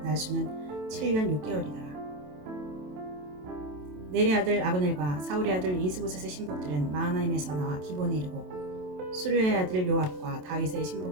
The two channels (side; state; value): left; late; 27 ms